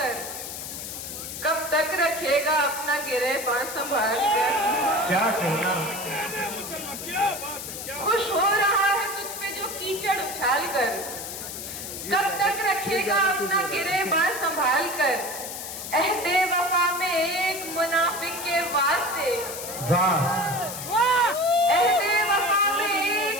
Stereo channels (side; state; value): left; noise; hiss, 8 dB below the sound